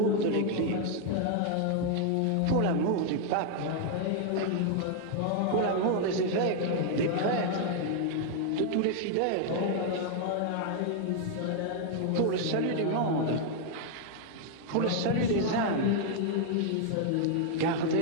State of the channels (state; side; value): different; both; correlation 0.00